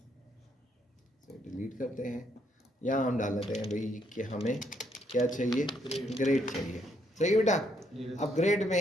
डिलीट करते हैं, यहाँ हम डाल देते हैं भाई कि हमें क्या चाहिए, ग्रेड चाहिए। सही है बेटा। अब ग्रेड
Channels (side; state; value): both; normal; correlation 0.72